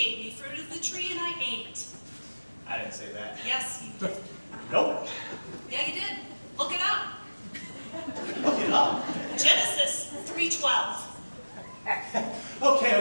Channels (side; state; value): both; inverted; correlation -1.00